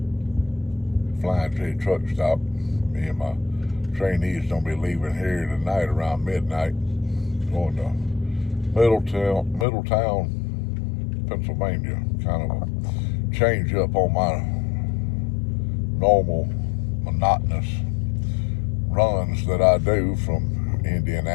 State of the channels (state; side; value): drops out; right; at 9.7 s